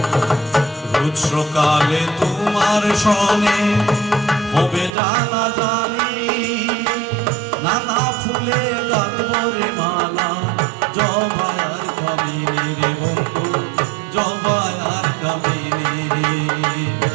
সকালে তোমার সনে হবে জানা জানি নানা ফুলে গাঁথবরে মালা জবায়ার কামিনী রে বন্ধু জবায়ার কামিনী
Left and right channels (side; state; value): left; drops out; at 4.9 s